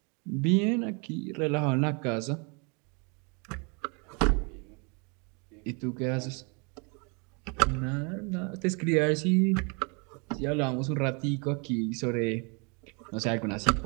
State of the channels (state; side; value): quieter; left; 33.3 dB